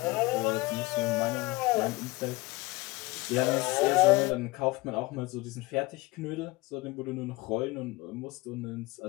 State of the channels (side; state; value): right; quieter; 21.9 dB